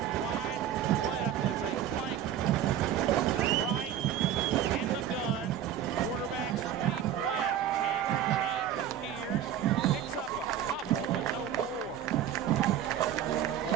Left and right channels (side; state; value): left; quieter; 9.9 dB